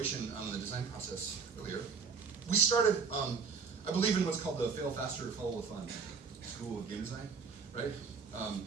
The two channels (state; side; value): quieter; left; 5.6 dB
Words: on the design process earlier. We started. I believe in what's called the fail faster, follow the fun school of game design, right?